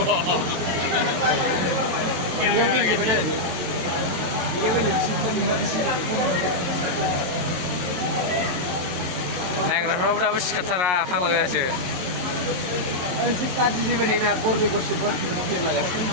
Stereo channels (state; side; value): late; left; 22 ms